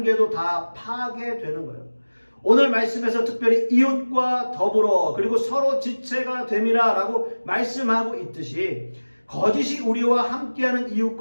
다 파괴되는 거예요. 오늘 말씀에서 특별히 이웃과 더불어 그리고 서로 지체가 됨이라 라고 말씀하고 있듯이 거짓이 우리와 함께하는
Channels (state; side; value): inverted; both; correlation -1.00